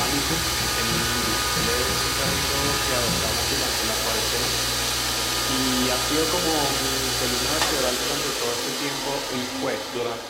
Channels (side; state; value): both; identical; correlation 1.00